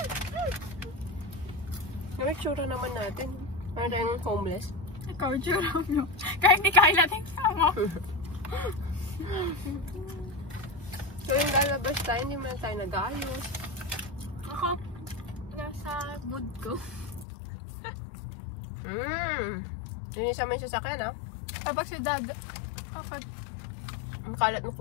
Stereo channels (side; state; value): right; drops out; at 17.2 s